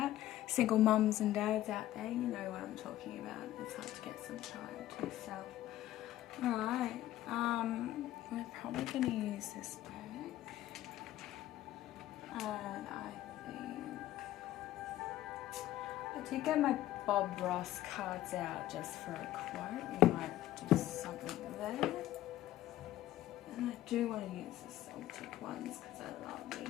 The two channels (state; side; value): quieter; right; 14.2 dB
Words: Single mums and dads out there, you know what I'm talking about. It's hard to get some time to yourself. Alright, we're probably going to use this deck. And I did get my BobRoss cards out just for a quote. We might do something there. And I do want to use the Celtic ones because I love